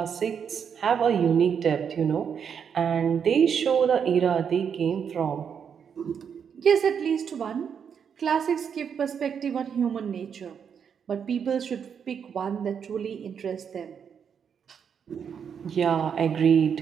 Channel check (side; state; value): left; quieter; 7.3 dB